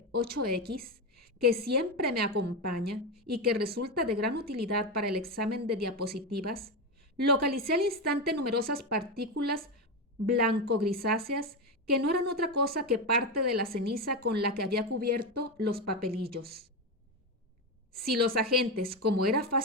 8X, que siempre me acompaña y que resulta de gran utilidad para el examen de diapositivas, localicé al instante numerosas partículas blanco-grisáceas que no eran otra cosa que parte de la ceniza con la que había cubierto los papelillos. Si los agentes, como era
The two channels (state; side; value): normal; both; correlation 0.13